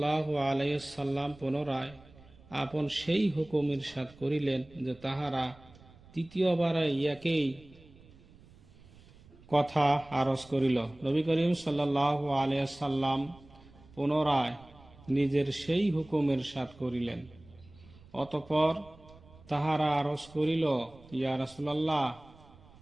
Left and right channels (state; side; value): noise; right; rumble, 24 dB below the sound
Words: আলাইহি সাল্লাম পুনরায় আপন সেই হুকুম ইরশাদ করিলেন যে তাহারা তৃতীয়বার ইয়াকেই কথা আরজ করিল। নবী করিম সাল্লাল্লাহু আলাইহি সাল্লাম পুনরায় নিজের সেই হুকুম ইরশাদ করিলেন। অতঃপর তাহারা আরজ করিল, ইয়া রাসূলুল্লাহ,